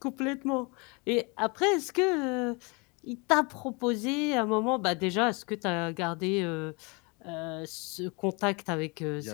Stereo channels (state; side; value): quieter; right; 29.7 dB